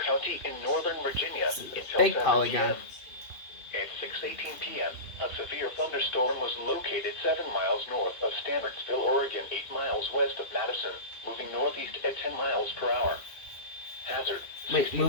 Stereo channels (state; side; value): late; right; 2.7 ms